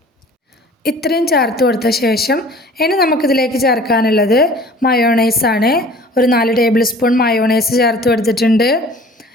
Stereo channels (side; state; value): both; normal; correlation 0.47